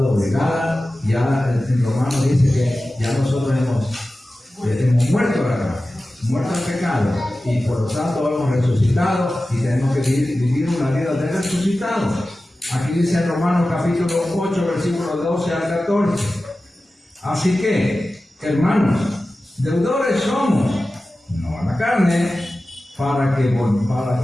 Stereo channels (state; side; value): normal; both; correlation 0.95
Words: ya en Romanos dice que ya nosotros hemos muerto a la carne, muerto al pecado, y por lo tanto hemos resucitado y tenemos que vivir una vida de resucitados. Aquí dice en Romanos capítulo 8, versículos 12 al 14. Así que, hermanos, deudores somos, no a la carne, para que